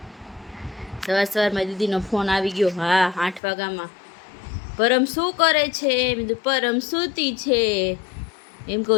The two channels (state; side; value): drops out; right; at 3.4 s